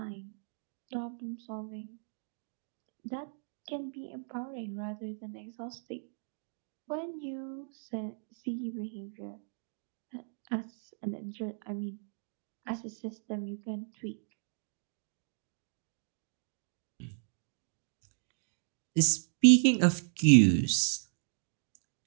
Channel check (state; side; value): silent; left; digital silence